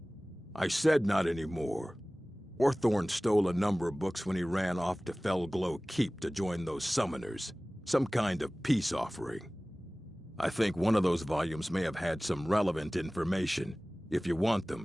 I said not anymore. Orthorn stole a number of books when he ran off to Felglow Keep to join those summoners. Some kind of peace offering. I think one of those volumes may have had some relevant information. If you want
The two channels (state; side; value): normal; both; correlation 0.98